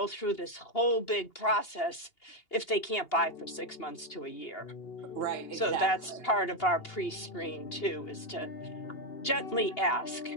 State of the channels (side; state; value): right; late; 2.8 ms